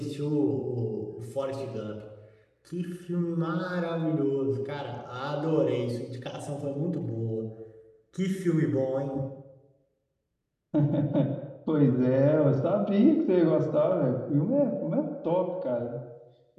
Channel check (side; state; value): both; identical; correlation 1.00